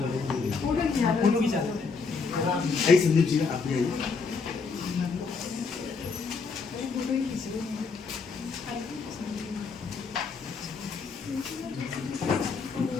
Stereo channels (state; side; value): quieter; right; 4.8 dB